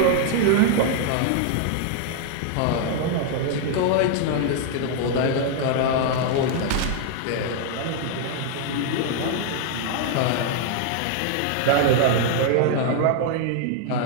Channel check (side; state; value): both; different; correlation 0.00